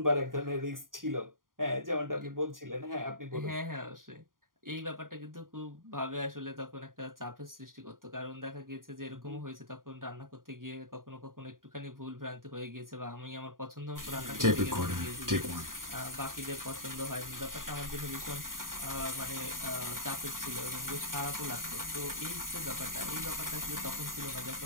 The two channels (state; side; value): late; left; 0.90 ms